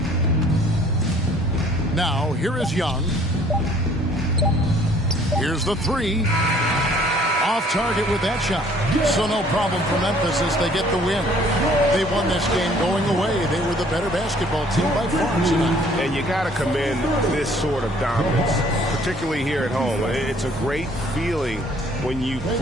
Now, here is Young. Here's the three. Off target with that shot. So no problem for Memphis as they get the win. They won this game going away. They were the better basketball team by far tonight. And you got to commend this sort of dominance, particularly here at home. It's a great feeling when you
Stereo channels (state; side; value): normal; both; correlation 0.57